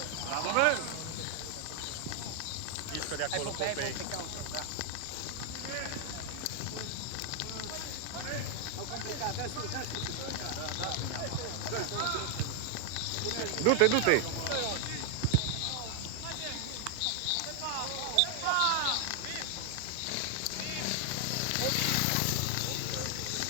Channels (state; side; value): different; both; correlation 0.00